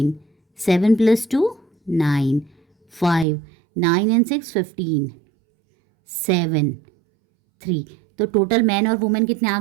7 + 2 9, 5, 9 and 6 15, 7 3। तो टोटल मैन और वुमेन कितने आ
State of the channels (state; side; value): drops out; left; at 3.2 s